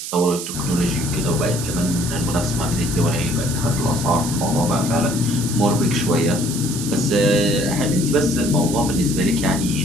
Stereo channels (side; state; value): right; noise; hiss, 7 dB below the sound